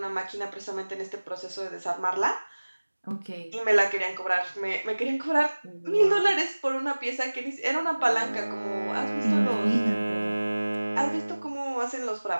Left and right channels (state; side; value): inverted; both; correlation -1.00